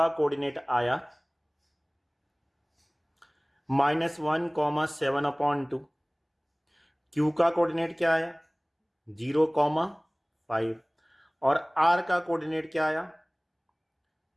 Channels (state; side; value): identical; both; correlation 1.00